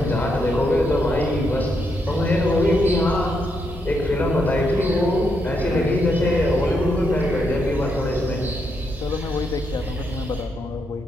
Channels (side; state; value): both; normal; correlation 0.80